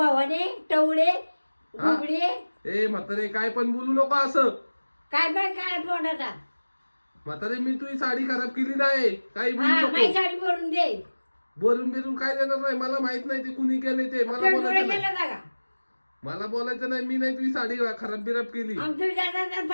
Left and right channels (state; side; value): inverted; both; correlation -1.00